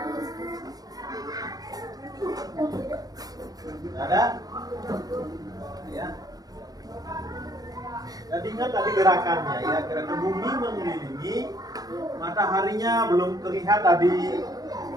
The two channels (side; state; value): left; late; 0.18 ms